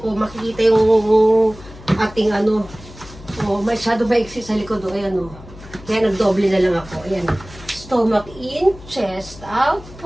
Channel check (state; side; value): noise; left; hum, 18 dB below the sound